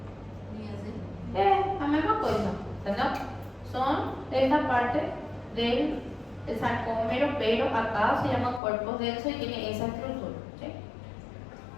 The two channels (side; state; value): right; drops out; at 8.6 s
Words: Linha Z. La misma cosa, ¿entendés? Son esta parte del sarcómero, pero acá se llama cuerpos densos y tiene esa estructura. ¿Sí?